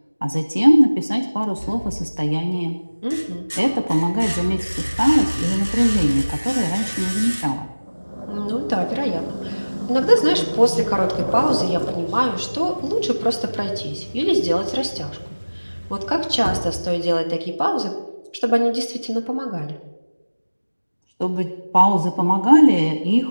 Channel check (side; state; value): both; inverted; correlation -1.00